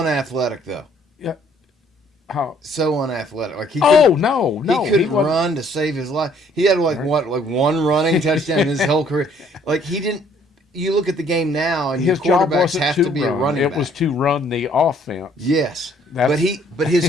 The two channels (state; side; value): normal; both; correlation 0.62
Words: though. Yeah. How? So unathletic. Like he No. He couldn't run to save his life. He had like one running touchdown in his whole career. Like he didn't. You look at the game now, and His your job quarterbacks wasn't have to to be run. a running It back. was to run the offense. Yes, That's- but his